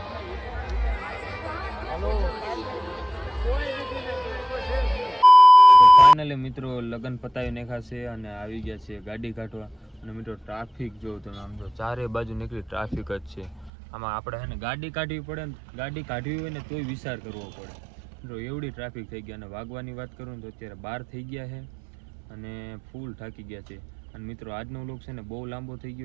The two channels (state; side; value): drops out; left; at 13.7 s